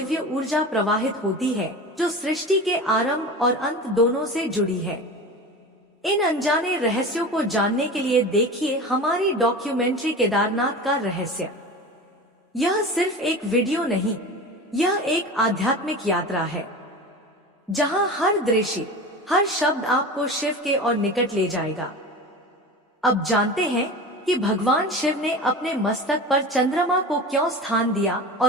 ऊर्जा प्रवाहित होती है जो सृष्टि के आरंभ और अंत दोनों से जुड़ी है। इन अनजाने रहस्यों को जानने के लिए देखिए हमारी डॉक्यूमेंट्री केदारनाथ का रहस्य। यह सिर्फ एक वीडियो नहीं, यह एक आध्यात्मिक यात्रा है जहां हर दृश्य, हर शब्द आपको शिव के और निकट ले जाएगा। अब जानते हैं कि भगवान शिव ने अपने मस्तक पर चंद्रमा को क्यों स्थान दिया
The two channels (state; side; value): normal; both; correlation 0.31